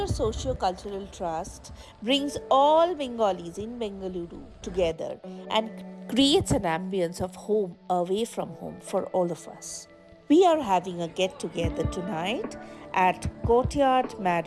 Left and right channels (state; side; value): identical; both; correlation 1.00